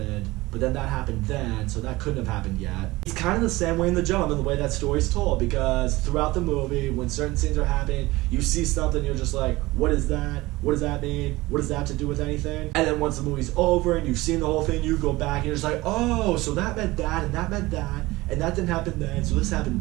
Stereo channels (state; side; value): quieter; left; 19.9 dB